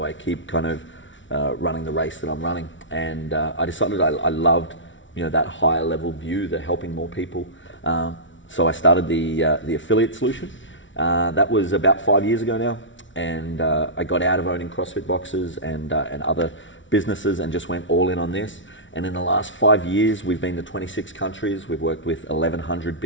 I keep kind of running the race that I'm running? And I decided I loved, that higher level view, the helping more people. So I started the affiliate solution. That was about 5 years ago now. And I got out of owning CrossFit boxes and other businesses and just went all in on this. And in the last 5 years, we've been to 26 countries. We've worked with 1,100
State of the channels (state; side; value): late; right; 0.56 ms